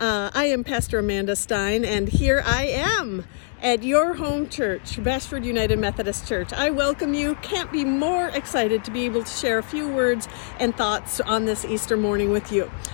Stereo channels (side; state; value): right; silent; digital silence